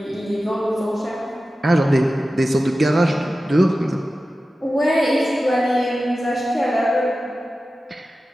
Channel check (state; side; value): normal; both; correlation 0.94